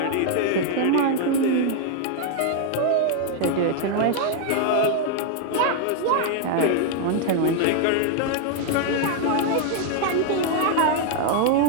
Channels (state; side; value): different; both; correlation 0.00